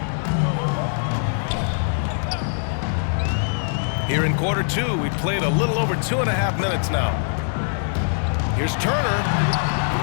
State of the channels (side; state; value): right; silent; digital silence